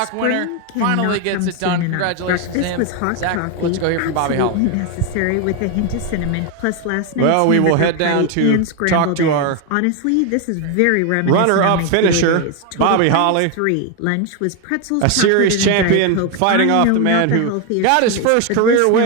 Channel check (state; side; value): different; both; correlation 0.01